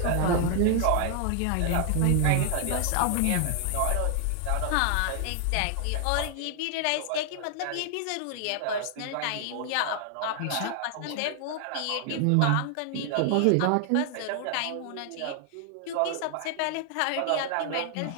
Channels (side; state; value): both; different; correlation 0.00